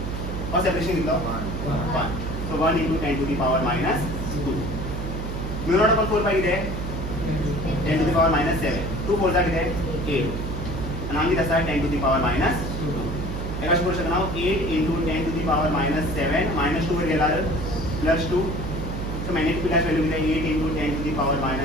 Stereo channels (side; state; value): right; noise; hum, 5 dB below the sound